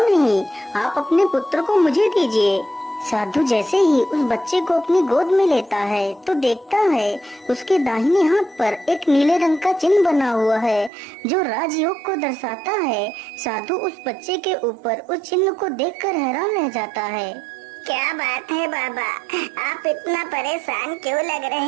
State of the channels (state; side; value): drops out; left; at 10.9 s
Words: आप अपने पुत्र को मुझे दीजिए। साधु जैसे ही उस बच्चे को अपनी गोद में लेता है तो देखता है उसके दाहिने हाथ पर एक नीले रंग का चिन्ह बना हुआ है जो राजयोग को दर्शाता है। साधु उस बच्चे के ऊपर उस चिन्ह को देखकर हैरान रह जाता है। क्या बात है बाबा, आप इतना परेशान क्यों लग